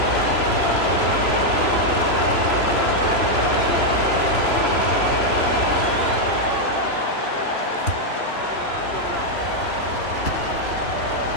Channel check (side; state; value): right; late; 3.0 ms